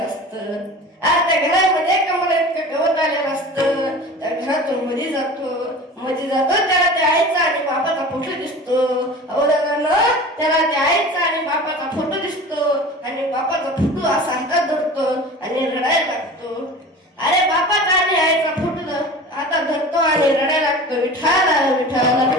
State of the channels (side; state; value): both; normal; correlation 0.37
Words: असतं. त्या घरामध्ये कमरा इतकं गवत आलेलं असतं. त्या घरातून मध्ये जातो त्याला त्या आईचा आणि बाबाचा फोटो दिसतो. त्याला त्या